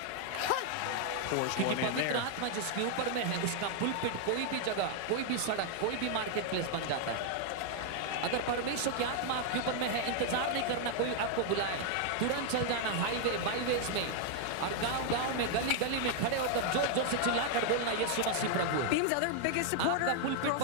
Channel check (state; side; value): different; both; correlation 0.00